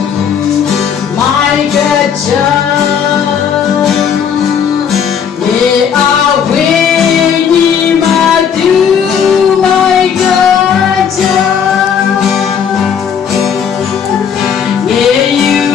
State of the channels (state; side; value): quieter; right; 7.6 dB